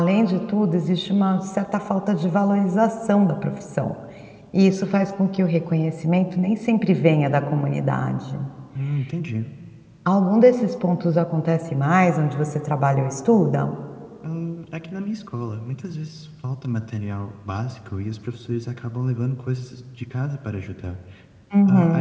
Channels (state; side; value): identical; both; correlation 1.00